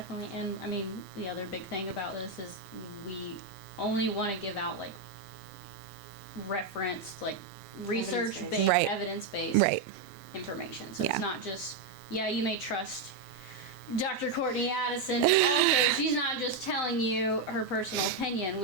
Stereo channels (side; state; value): left; quieter; 4.1 dB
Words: And I mean, the other big thing about this is we only want to give out like reference, like research-based, evidence-based information. So it's not just, you may trust Dr. Courtney Addison, but also she's not just telling you her personal opinion.